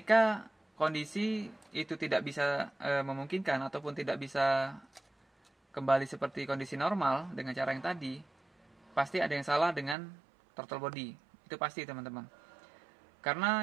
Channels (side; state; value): left; drops out; at 10.0 s